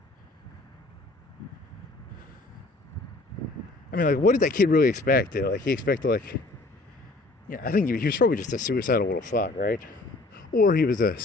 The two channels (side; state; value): right; quieter; 3.1 dB